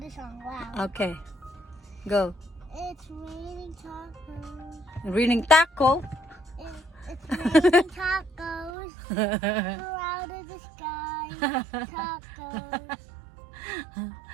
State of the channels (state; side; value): drops out; left; at 8.7 s